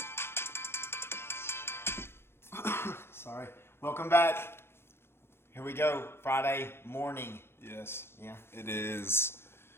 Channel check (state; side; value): late; right; 0.12 ms